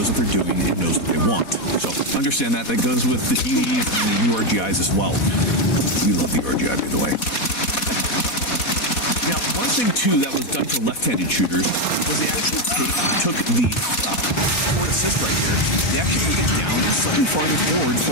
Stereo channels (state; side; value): late; right; 4.1 ms